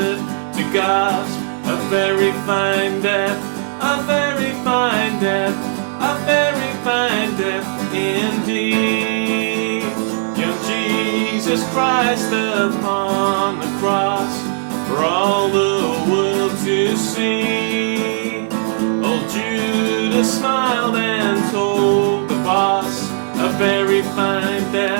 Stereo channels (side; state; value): left; silent; digital silence